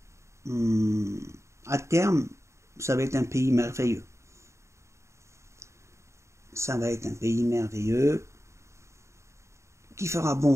à terme, ça va être un pays merveilleux. Ça va être un pays merveilleux qui fera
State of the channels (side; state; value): left; late; 0.14 ms